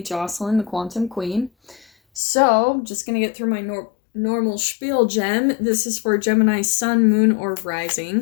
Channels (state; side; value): drops out; right; at 2.2 s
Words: Jocelyn, the Quantum Queen. So, just gonna get through my normal spiel, Gem. This is for Gemini Sun, Moon, or